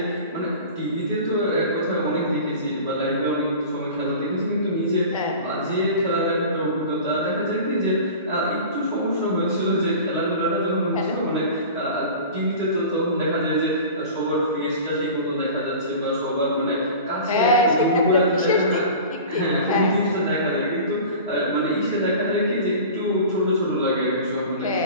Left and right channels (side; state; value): both; inverted; correlation -0.37